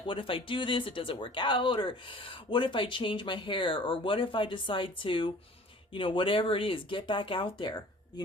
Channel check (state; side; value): normal; both; correlation 0.47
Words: what if I do this, it doesn't work out? Or what if I change my hair? Or what if I decide to, whatever it is, get back out there? you